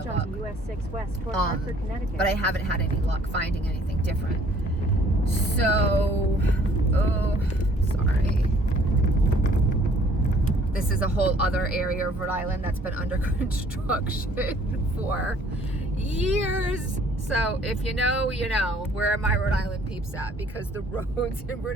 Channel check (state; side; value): normal; both; correlation 0.58